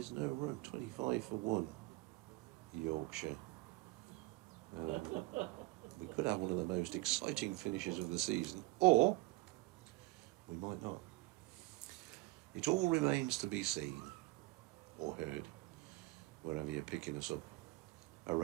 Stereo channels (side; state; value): left; quieter; 22.3 dB